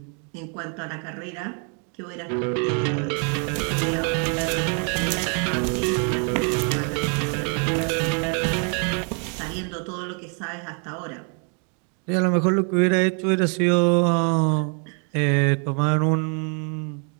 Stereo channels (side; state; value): left; quieter; 39.3 dB